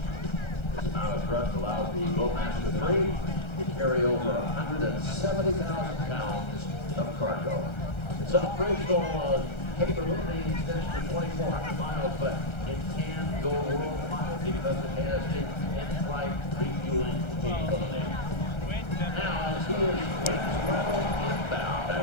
This amount of thrust allows the Globemaster III carry over 170,000 pounds of cargo. Its operational capability extends to 2,400 miles, but it can go worldwide because it has the in-flight refueling capability. Now, as he is traveling inbound, I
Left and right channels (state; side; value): late; right; 1.3 ms